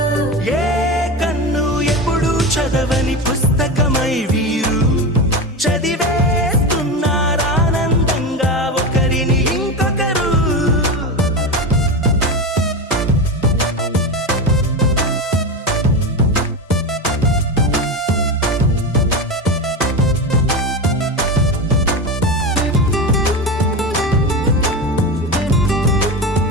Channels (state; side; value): normal; both; correlation 0.21